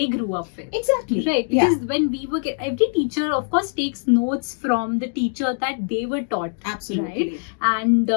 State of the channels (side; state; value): right; silent; digital silence